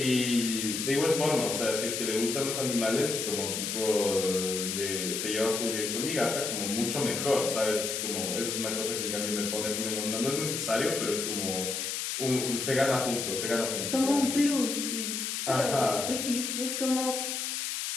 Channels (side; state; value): left; noise; hiss, 2 dB below the sound